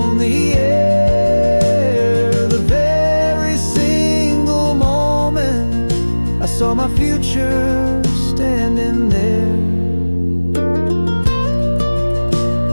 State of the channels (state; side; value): inverted; both; correlation -1.00